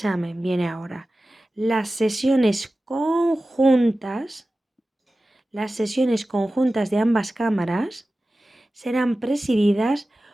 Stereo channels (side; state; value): both; normal; correlation 0.95